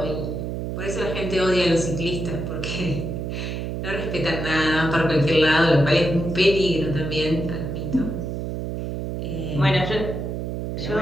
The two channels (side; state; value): right; noise; hum, 4 dB below the sound